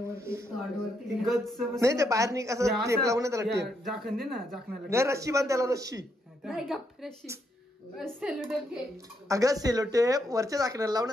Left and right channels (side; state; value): both; normal; correlation 0.77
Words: नाही ते बाहेर निघ असं टेप लावून त्याला टेप झाकण दे ना. झाकणाला नाही रस्सी बांध त्याला. रस्सी अगं सेलो टेप वरच्या झाकणाला